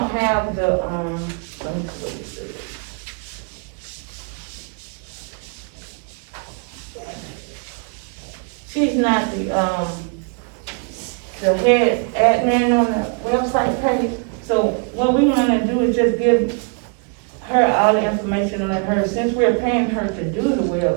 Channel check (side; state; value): left; quieter; 38.2 dB